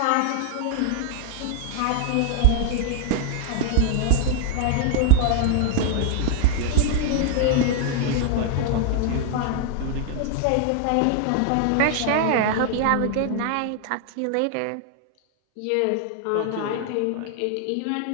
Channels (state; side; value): different; both; correlation 0.00